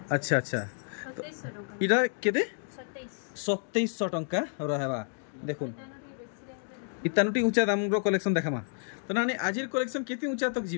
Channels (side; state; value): right; silent; 58 dB below the other